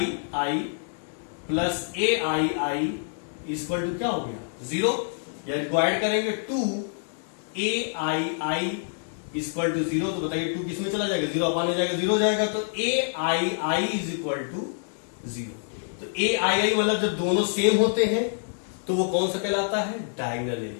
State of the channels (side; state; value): right; silent; digital silence